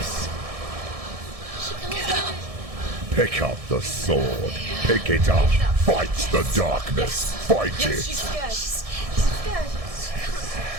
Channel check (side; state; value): left; late; 1.6 ms